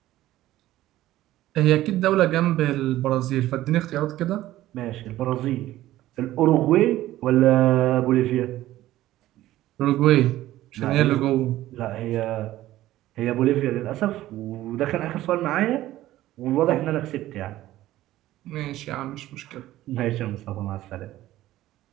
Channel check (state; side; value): quieter; left; 15.0 dB